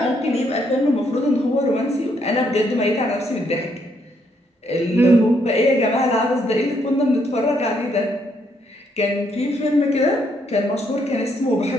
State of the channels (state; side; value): normal; both; correlation 0.73